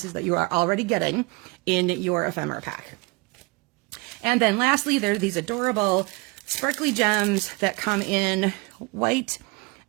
that you are already getting in your ephemera pack. And then lastly, there are these adorable sparkly gems that come in white,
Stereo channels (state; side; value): quieter; left; 26.4 dB